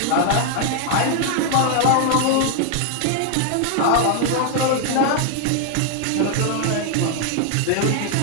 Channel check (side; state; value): both; different; correlation 0.00